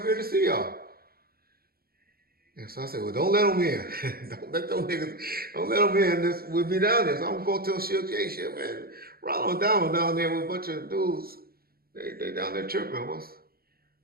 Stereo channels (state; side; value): late; left; 0.44 ms